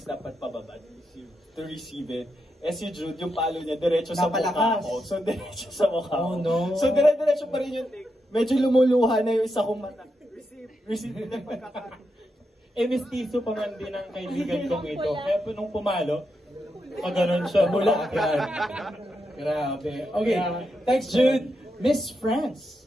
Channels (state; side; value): normal; both; correlation 0.84